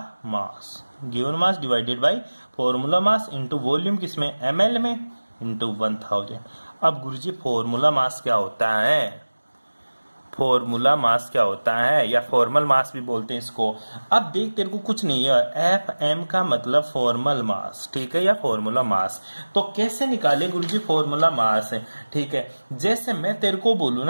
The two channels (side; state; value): both; inverted; correlation -1.00